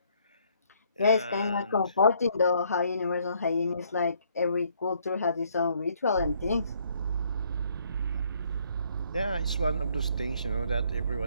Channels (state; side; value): inverted; both; correlation -0.66